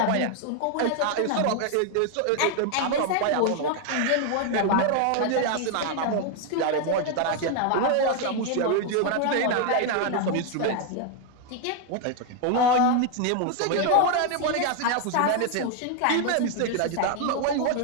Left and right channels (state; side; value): different; both; correlation 0.01